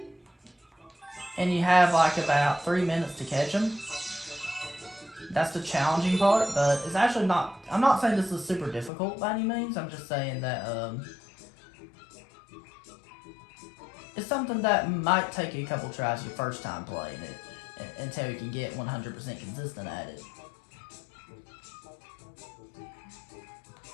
And you have like about 3 minutes to catch them. That's the challenging part, but it's actually not, I'm not saying this is super difficult by any means, I'm just saying that, it's something that might take you a couple tries your first time playing it, until you can get 100% consistent at it.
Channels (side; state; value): right; drops out; at 8.9 s